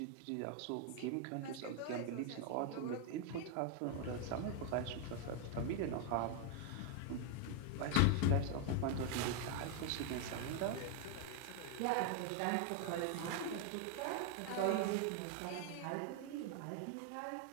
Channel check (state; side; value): different; both; correlation 0.01